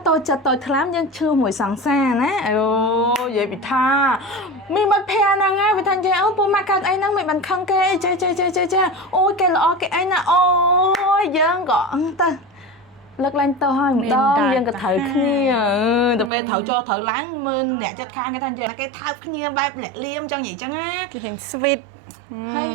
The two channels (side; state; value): left; drops out; at 16.3 s